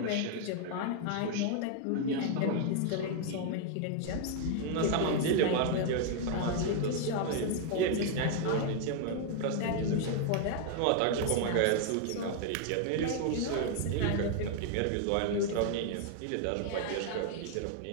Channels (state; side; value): different; both; correlation 0.00